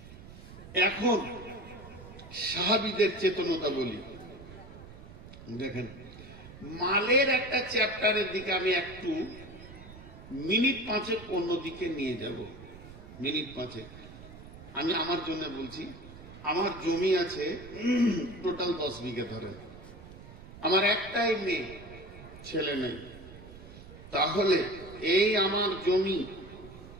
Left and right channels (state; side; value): noise; right; rumble, 16 dB below the sound